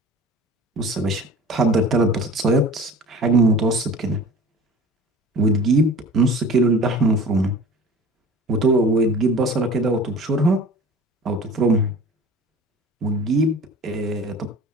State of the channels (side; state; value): both; normal; correlation 0.41